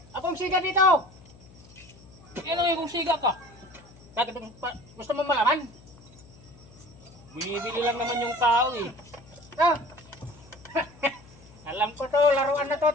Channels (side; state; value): left; noise; hum, 23 dB below the sound